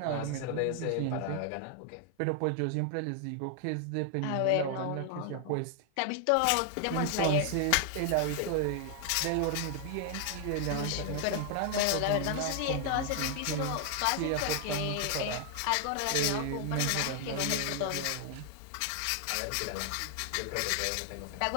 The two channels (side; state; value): both; different; correlation 0.00